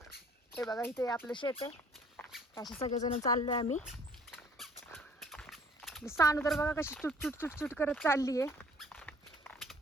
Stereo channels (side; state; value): both; normal; correlation 0.56